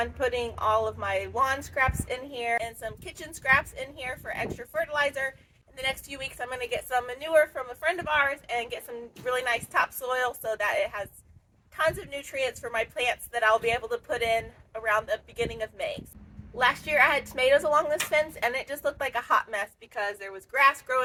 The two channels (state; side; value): identical; both; correlation 1.00